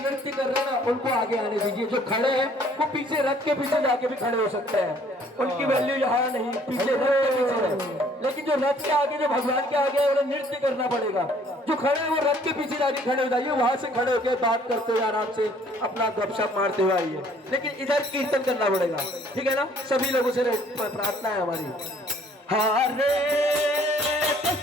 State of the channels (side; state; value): both; normal; correlation 0.59